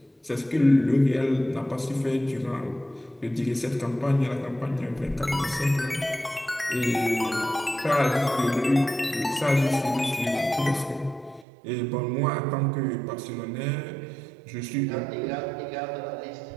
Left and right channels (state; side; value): drops out; left; at 11.5 s